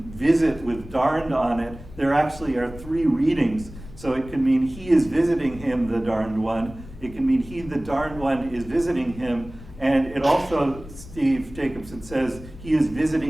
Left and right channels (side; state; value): left; noise; rumble, 16 dB below the sound